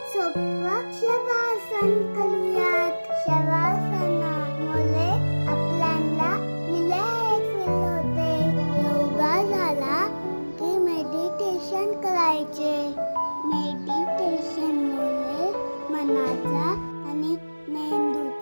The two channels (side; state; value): both; inverted; correlation -1.00